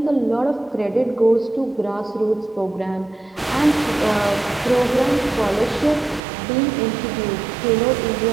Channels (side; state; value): left; drops out; at 6.2 s